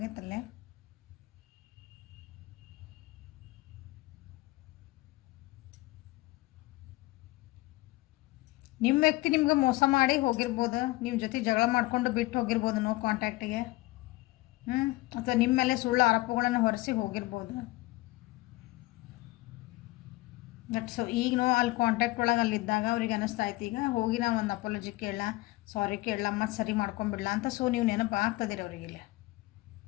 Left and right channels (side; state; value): right; quieter; 20.5 dB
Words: ನಿಮ್ಮ ವ್ಯಕ್ತಿ ನಿಮ್ಗೆ ಮೋಸ ಮಾಡಿ ಹೋಗಿರ್ಬೋದು, ನಿಮ್ಮ ಜೊತೆ ಜಗಳ ಮಾಡಿಕೊಂಡು ಬಿಟ್ಟು ಹೋಗಿರ್ಬೋದು ನೋ ಕಾಂಟ್ಯಾಕ್ಟಿಗೆ, ಅಥವಾ ನಿಮ್ಮ ಮೇಲೆ ಸುಳ್ಳು ಆರೋಪಗಳನ್ನು ಹೊರಿಸಿ ಹೋಗಿರ್ಬೋದು. ಬಟ್ ಸೊ ಈಗ ನೋ ಅಲ್ಲಿ ಕಾಂಟ್ಯಾಕ್ಟ್ ಒಳಗೆ ಅಲ್ಲಿದ್ದಾಗ ಅವ್ರಿಗೆ ಅನ್ನಿಸ್ತಾ ಇತ್ತು ಈಗ ಹೋಗಿ ನಾವು ಒಂದು ಅಪಾಲಜಿ ಕೇಳಲ್ಲ, ಸಾರಿ ಕೇಳಲ್ಲ, ಮತ್ತು ಸರಿ ಮಾಡ್ಕೊಂಬಿಡಲ್ಲ ಅಂತ. ಸೊ ನೀವು ನೆನಪು ಆಗ್ತದಿರಿ ಅವ್ರಿಗೆ, ಇಲ್ಲಿ